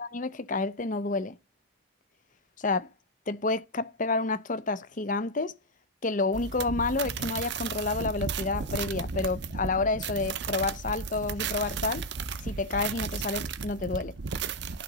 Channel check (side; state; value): both; normal; correlation 0.01